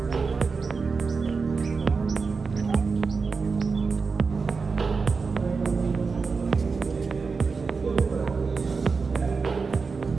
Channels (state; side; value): quieter; left; 4.7 dB